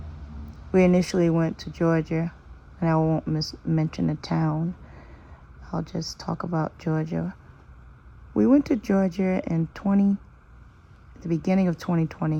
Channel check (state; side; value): identical; both; correlation 1.00